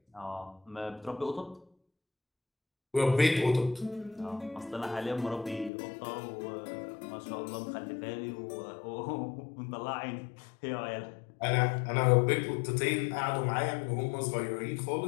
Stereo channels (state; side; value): drops out; right; at 5.7 s